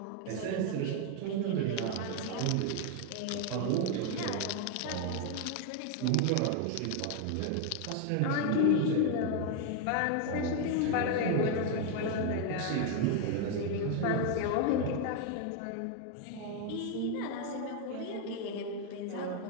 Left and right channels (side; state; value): both; different; correlation 0.01